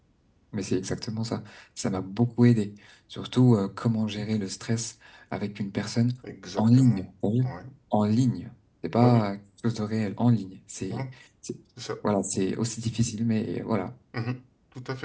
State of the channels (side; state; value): both; identical; correlation 1.00